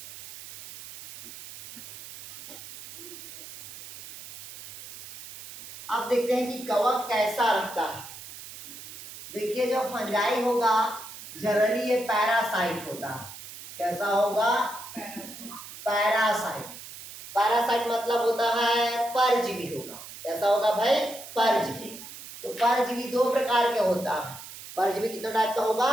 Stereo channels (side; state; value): right; noise; hiss, 13 dB below the sound